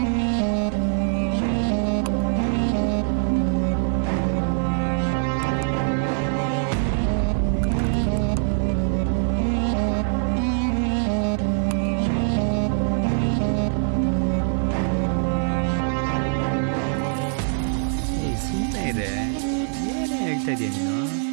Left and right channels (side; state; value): left; silent; digital silence